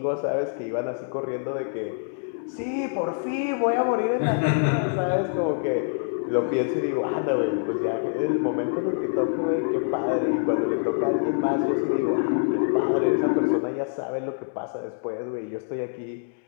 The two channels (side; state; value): right; silent; digital silence